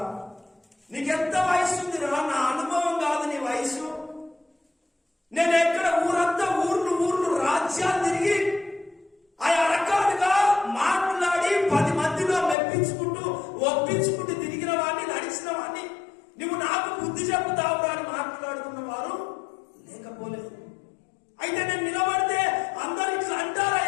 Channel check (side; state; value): right; drops out; at 12.6 s